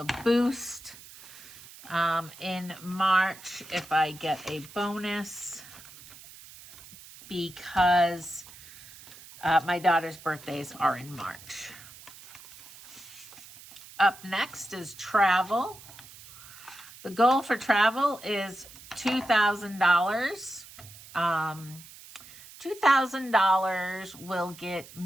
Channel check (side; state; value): right; noise; hiss, 19 dB below the sound